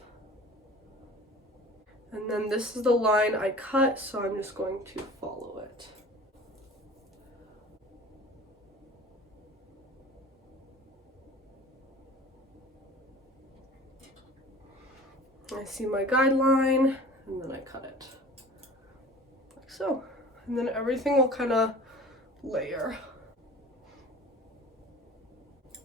And then this is the line I cut, so I'm just going to follow it. I see my guideline, and then I cut it, like so. And then everything will kind of layer.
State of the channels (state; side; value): normal; both; correlation 0.42